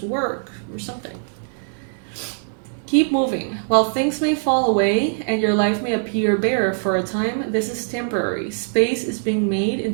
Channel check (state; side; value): silent; left; 64 dB below the other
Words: work, or something. Keep moving. While things may fall away and your life may appear bare for a time, this is temporary. Space is being made